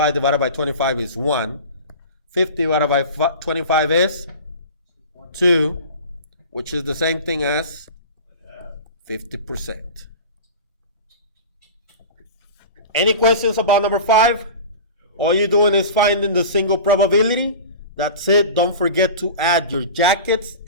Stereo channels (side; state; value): both; inverted; correlation -0.35